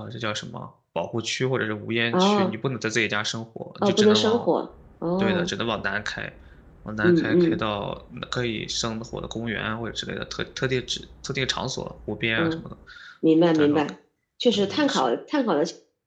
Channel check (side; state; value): both; identical; correlation 1.00